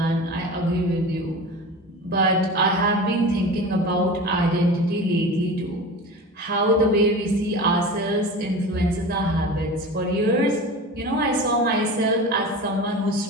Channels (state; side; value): normal; both; correlation 0.33